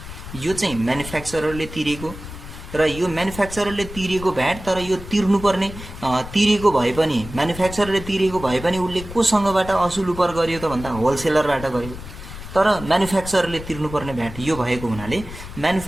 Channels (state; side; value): noise; left; rumble, 12 dB below the sound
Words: यो चाहिँ म्यानुफ्याक्चररले तिरेको र यो म्यानुफ्याक्चररले तिरेको भ्याट, तर यो तिर्नुपर्ने तिरेको भए पनि म्यानुफ्याक्चररले तिरेको भए पनि उसले कोसँगबाट असुल उपर गर्यो त भन्दा होलसेलरबाट गर्यो, तर म्यानुफ्याक्चररले तिर्नुपर्ने भ्याट यो भएको हुनाले